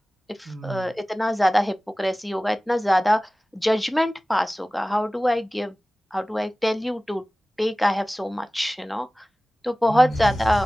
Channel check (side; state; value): both; normal; correlation 0.98